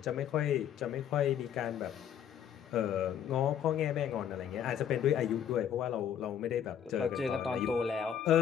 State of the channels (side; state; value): right; quieter; 9.1 dB